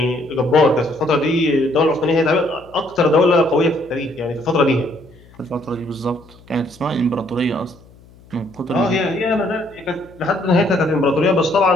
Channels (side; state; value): left; noise; hum, 25 dB below the sound